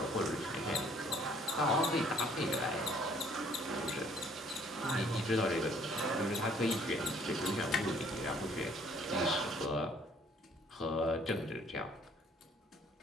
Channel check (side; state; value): both; normal; correlation 0.60